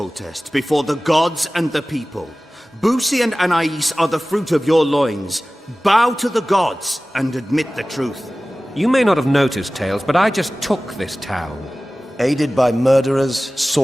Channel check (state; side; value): normal; both; correlation 0.97